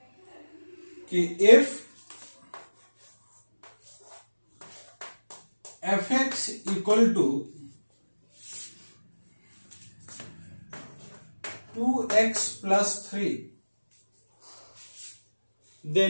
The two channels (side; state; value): both; inverted; correlation -1.00